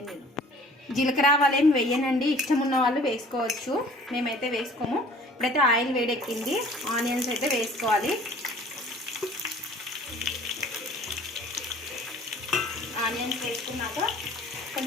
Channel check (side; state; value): both; normal; correlation 0.50